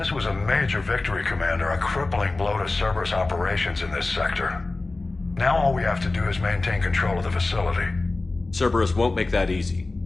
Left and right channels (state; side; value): quieter; right; 3.3 dB